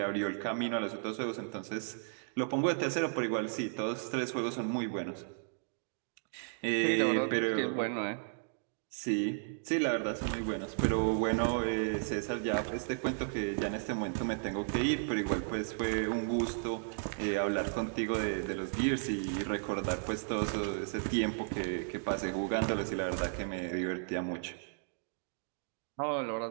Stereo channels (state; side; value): silent; left; digital silence